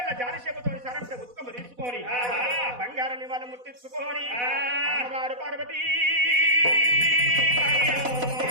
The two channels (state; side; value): late; left; 4.1 ms